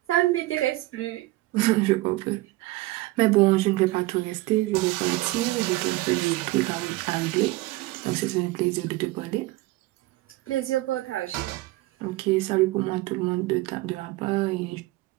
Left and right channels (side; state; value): left; quieter; 19.4 dB